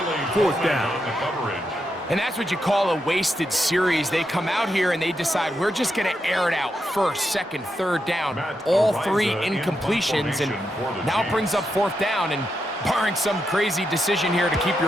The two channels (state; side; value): normal; both; correlation 0.84